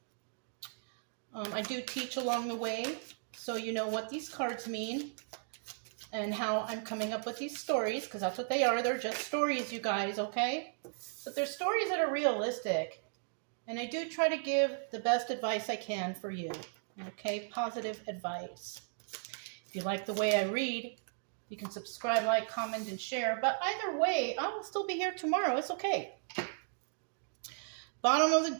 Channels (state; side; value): silent; left; digital silence